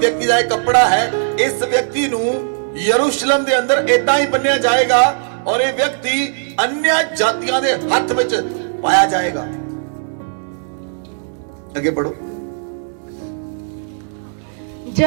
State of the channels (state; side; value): silent; left; digital silence